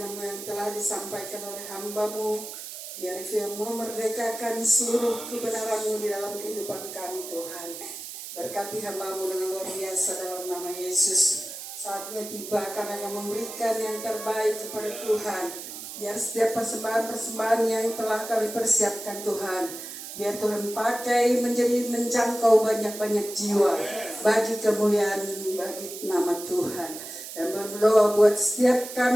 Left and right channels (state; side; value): noise; right; hiss, 10 dB below the sound